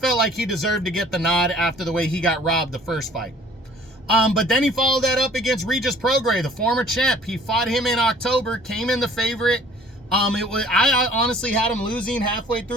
like he deserved to get the nod after the way he got robbed the first fight. But then he followed that up against Regis Prograis, the former champ. He fought him in October, came in the favorite. I honestly had him losing halfway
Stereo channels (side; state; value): both; normal; correlation 0.53